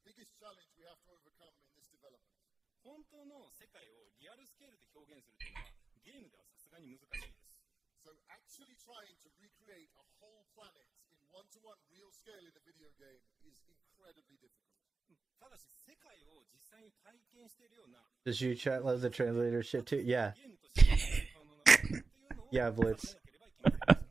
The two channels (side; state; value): left; quieter; 4.1 dB